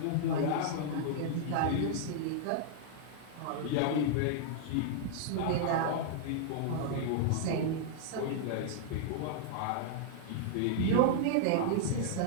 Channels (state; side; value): different; both; correlation -0.01